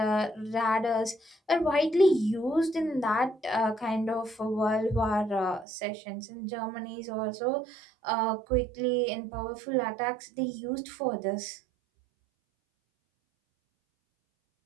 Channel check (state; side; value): drops out; left; at 5.7 s